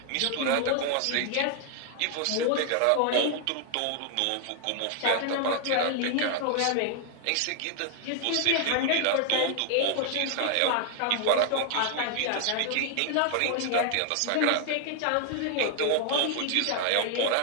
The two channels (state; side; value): different; both; correlation 0.00